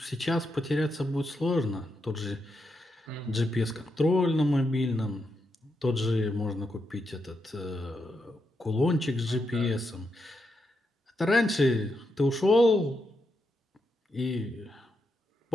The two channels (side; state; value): both; normal; correlation 0.84